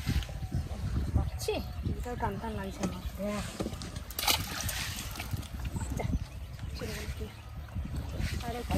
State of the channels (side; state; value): both; identical; correlation 1.00